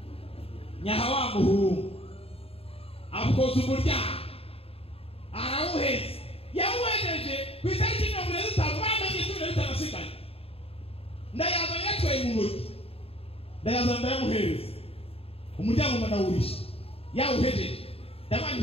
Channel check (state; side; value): late; right; 0.28 ms